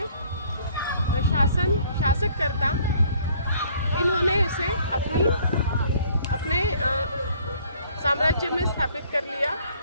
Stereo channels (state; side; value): inverted; both; correlation -0.59